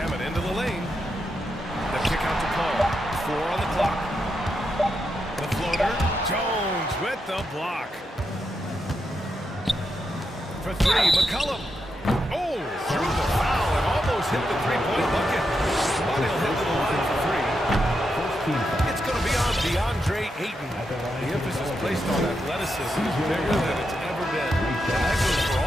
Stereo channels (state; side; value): normal; both; correlation 0.84